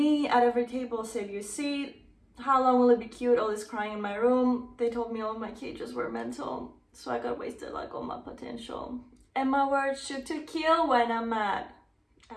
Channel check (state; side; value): identical; both; correlation 1.00